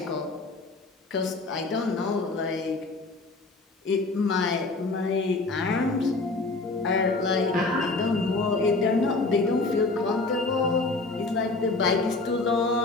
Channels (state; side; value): quieter; right; 3.4 dB